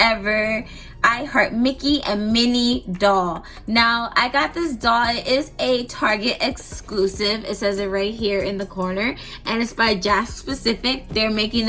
I Heart Mickey and Minnie doll. Now I got this doll, it is a Target exclusive, it says it right here in the corner, and it's by Jack Specific. They're making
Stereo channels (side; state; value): both; identical; correlation 1.00